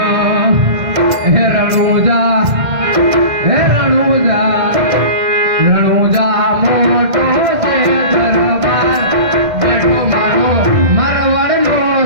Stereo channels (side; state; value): left; late; 2.1 ms